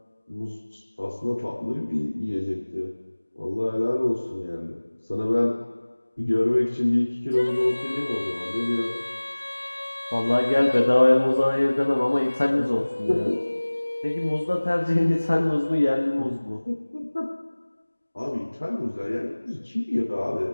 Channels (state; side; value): inverted; both; correlation -1.00